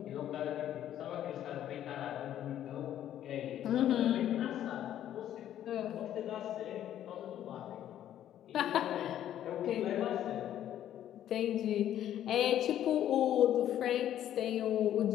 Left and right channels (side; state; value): right; quieter; 11.3 dB